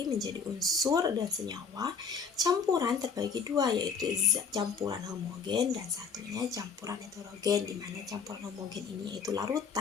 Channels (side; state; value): right; quieter; 5.6 dB